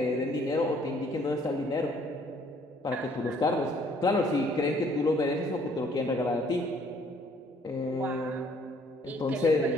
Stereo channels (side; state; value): both; normal; correlation 0.62